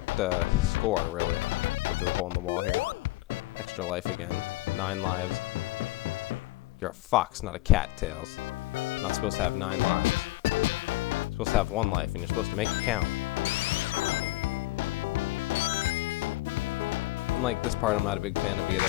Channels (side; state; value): right; quieter; 19.3 dB